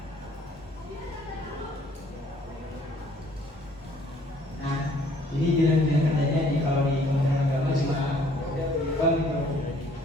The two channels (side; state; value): both; normal; correlation 0.60